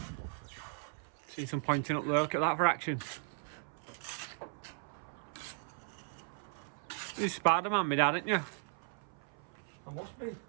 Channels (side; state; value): left; silent; 53 dB below the other